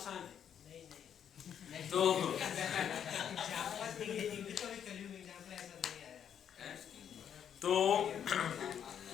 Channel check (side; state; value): right; quieter; 8.8 dB